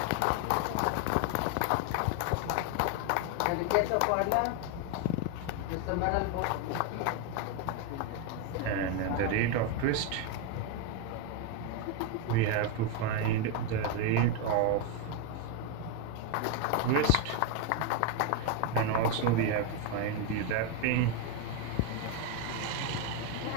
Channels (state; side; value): different; both; correlation 0.01